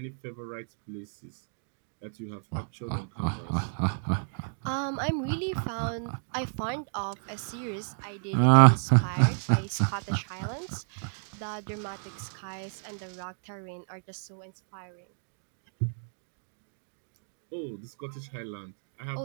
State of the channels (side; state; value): left; silent; digital silence